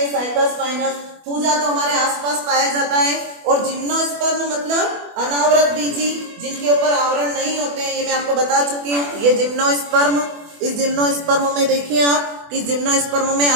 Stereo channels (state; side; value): late; left; 24 ms